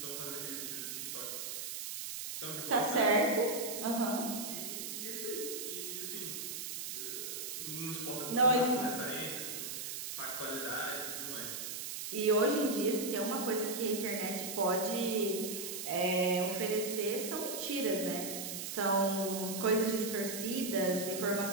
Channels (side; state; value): right; noise; hiss, 5 dB below the sound